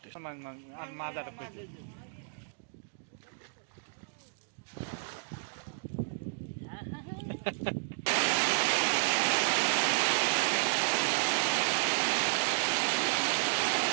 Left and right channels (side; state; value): left; silent; digital silence